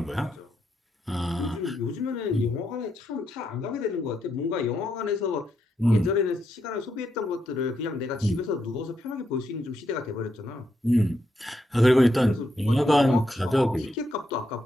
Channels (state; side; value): normal; both; correlation 0.81